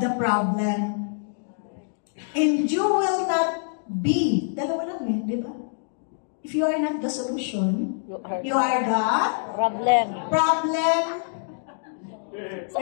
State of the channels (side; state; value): right; silent; digital silence